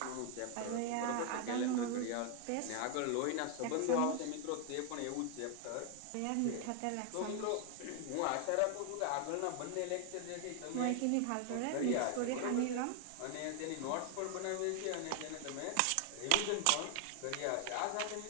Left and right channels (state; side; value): different; both; correlation 0.00